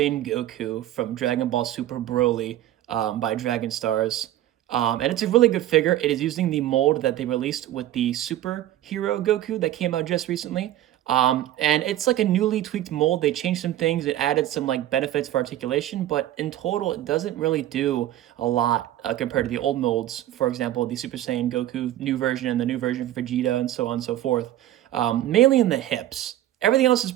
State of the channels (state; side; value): quieter; left; 13.4 dB